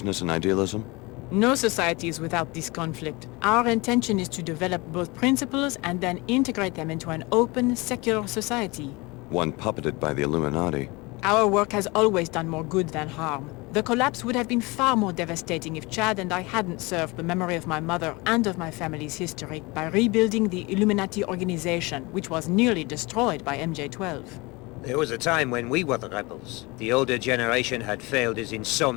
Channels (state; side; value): quieter; right; 24.9 dB